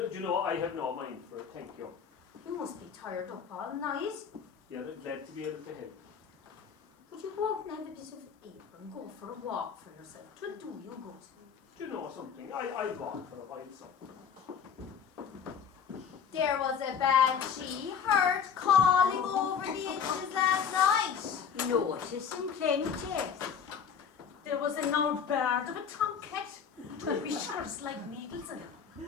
do you know, I have no mind for it, thank you. You must be tired up all night. Yeah, glad to be able to help. Would you go out and have a bit of air and go for a walk for yourself? 'Twill do you good. Do you know something? I'd walk for a while, so. There was a banshee heard calling over the inches last night. Noticing plenty. There was an old bird of a tomcat, 2 whiskers like needles in him,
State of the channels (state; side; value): quieter; right; 7.2 dB